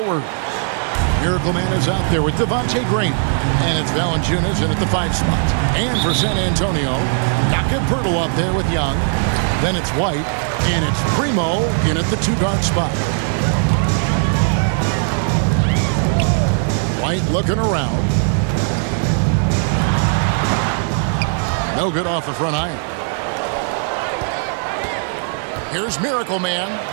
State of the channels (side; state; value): left; silent; digital silence